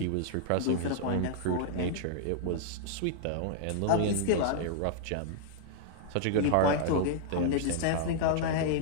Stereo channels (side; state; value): both; different; correlation -0.01